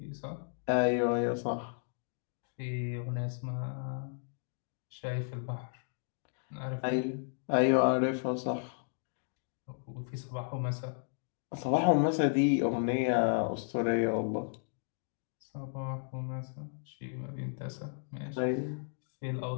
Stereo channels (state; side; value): silent; right; digital silence